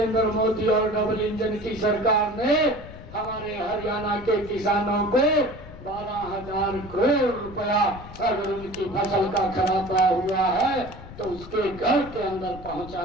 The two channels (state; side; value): noise; left; rumble, 15 dB below the sound